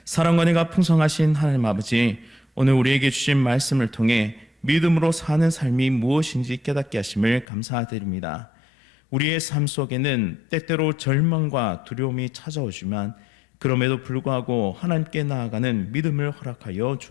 사랑과 은혜가 풍성하신 하나님 아버지, 오늘 우리에게 주신 말씀을 통해 믿음으로 사는 삶이 무엇인지 깨닫게 하심을 감사드립니다. 우리의 삶 속에는 때때로 절망과 두려움이 찾아오지만 그럼에도 불구하고 하나님께 나아가는 믿음을 허락하여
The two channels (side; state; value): right; drops out; at 7.5 s